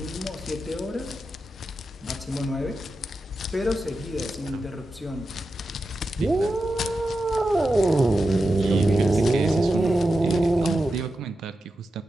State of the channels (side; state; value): both; normal; correlation 0.90